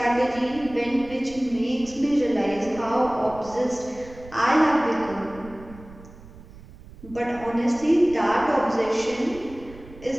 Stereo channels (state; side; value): noise; right; rumble, 19 dB below the sound